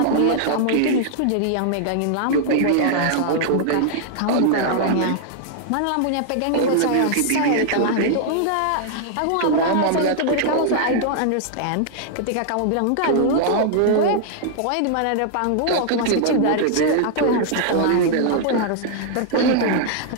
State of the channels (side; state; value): both; different; correlation -0.01